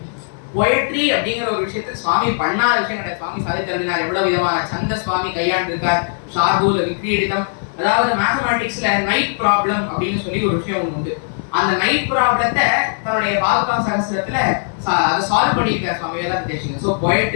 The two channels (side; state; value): right; silent; digital silence